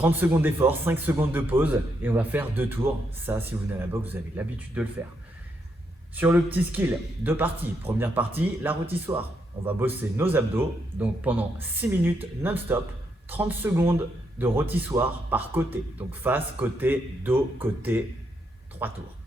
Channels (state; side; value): normal; both; correlation 0.79